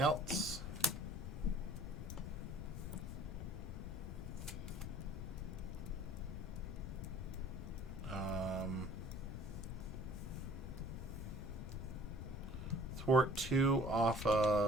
Thwart 2 off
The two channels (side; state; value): left; noise; rumble, 6 dB below the sound